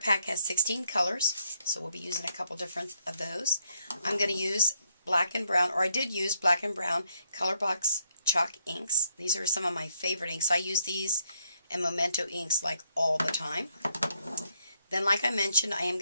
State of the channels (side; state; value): both; inverted; correlation -0.75